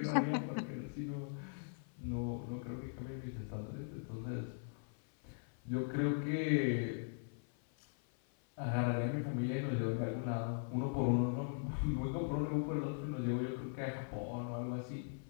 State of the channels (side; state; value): right; silent; 51 dB below the other